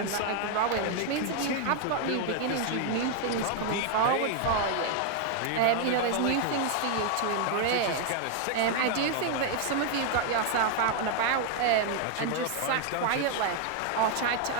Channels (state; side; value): different; both; correlation 0.01